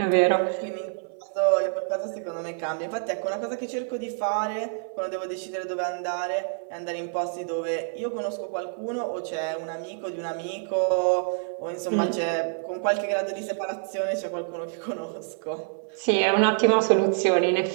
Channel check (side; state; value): left; silent; 60 dB below the other